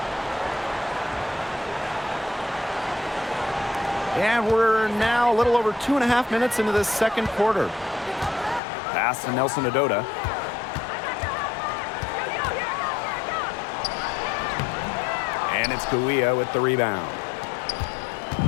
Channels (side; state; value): right; drops out; at 8.6 s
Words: And we're now a little over 2.5 minutes into this second quarter. Pass to Nelson Adota. And it's Kouia with the rebound.